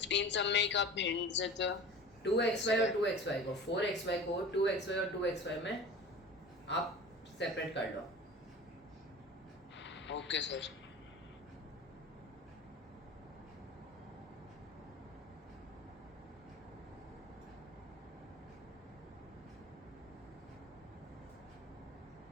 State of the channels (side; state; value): both; normal; correlation 0.38